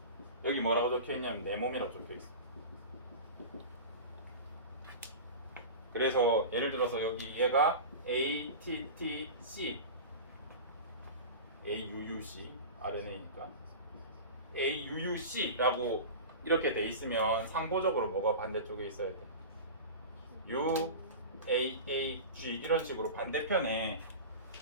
여기 뭐라고 적혀 있냐면 내 몸이라고 적혀 있어. 그래서 예를 들어서 여기 얘가 ATTC, AUUC RNA니까 AUUC라고 이렇게 돼 있으면 상호적으로 뭐가 반대쪽에 있어야 돼? UAAG 이런 식으로 반대편에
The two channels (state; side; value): inverted; both; correlation -0.30